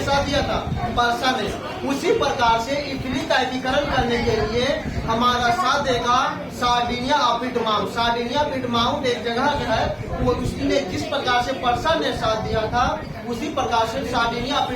साथ दिया था? पर्सा ने। उसी प्रकार से इटली का एकीकरण करने के लिए हमारा साथ देगा सार्डिनिया अपिटमाउंट। सार्डिनिया अपिटमाउंट एक जगह है, वो उसने जिस प्रकार से पर्सा ने साथ दिया था उसी प्रकार से सार्डिनिया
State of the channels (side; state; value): both; identical; correlation 1.00